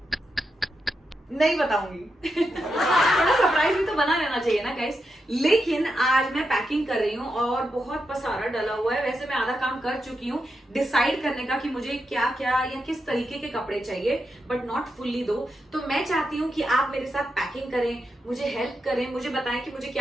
नहीं बताऊंगी थोड़ा सरप्राइज भी तो बना रहना चाहिए ना गाइस। लेकिन आज मैं पैकिंग कर रही हूँ और बहुत पसारा डला हुआ है। वैसे मैं आधा काम कर चुकी हूँ डिसाइड करने का कि मुझे क्या क्या या किस तरीके के कपड़े चाहिए, बट नॉट फुल्ली दो। तो मैं चाहती हूँ कि आप मेरे साथ पैकिंग करें, मुझे हेल्प करें, मुझे बताएं कि मुझे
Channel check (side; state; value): both; normal; correlation 0.86